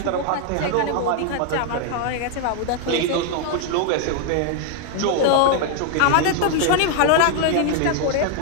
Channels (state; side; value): different; both; correlation 0.00